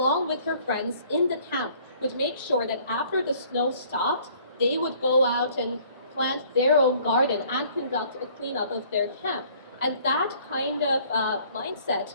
with her friends in the camp, would make sure that after the snow stopped, they would go out and plant their own garden and conduct a cleanup of their camp. And that kind of mindset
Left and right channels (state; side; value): inverted; both; correlation -0.57